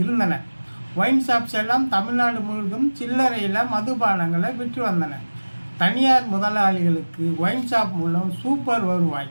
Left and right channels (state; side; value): inverted; both; correlation -1.00